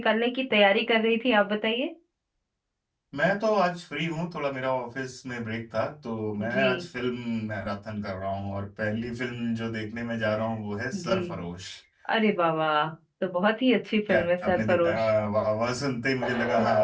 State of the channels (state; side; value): identical; both; correlation 1.00